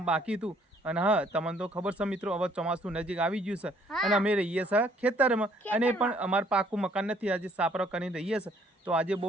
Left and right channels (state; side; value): normal; both; correlation 0.63